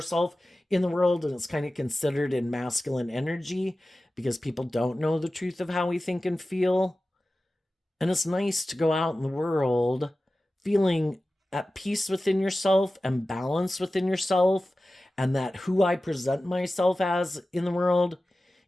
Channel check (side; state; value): both; normal; correlation 0.95